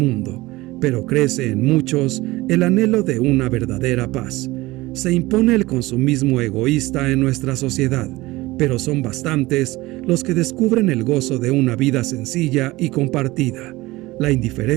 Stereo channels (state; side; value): quieter; left; 19.8 dB